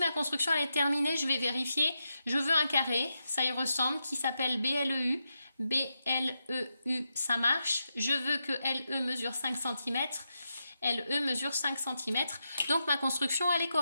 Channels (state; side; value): inverted; both; correlation -0.86